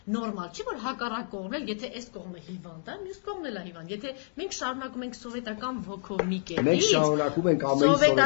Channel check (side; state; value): right; silent; digital silence